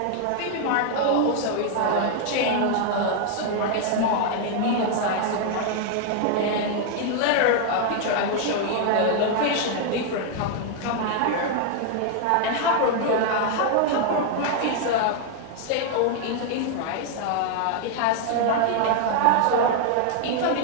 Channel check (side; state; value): both; different; correlation 0.00